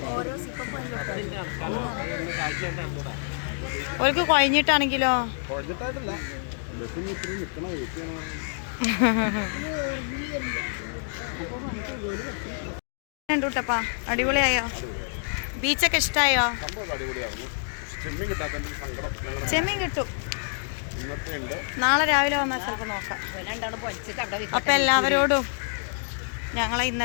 ഓർക്ക് കുഴഞ്ഞിട്ടാണെങ്കിലോ? കണ്ടുട്ടപ്പാ, അടിപൊളിയായോ? ബീച്ചൊക്കെ ഇഷ്ടമായോ? സംഭവം അടിപൊളിയായിരുന്നു. ചെമ്മീൻ കിട്ടാത്തതിന്റെ സങ്കടം ഞങ്ങളുടെ ചെമ്മീൻ കിട്ടും. ഇന്നത്തെ ഉണ്ട്. നാളെ രാവിലെ വന്നാൽ ചിലപ്പോൾ നോക്കാം. അപ്പം എല്ലാവരോടും ഞങ്ങൾ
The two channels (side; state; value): right; silent; digital silence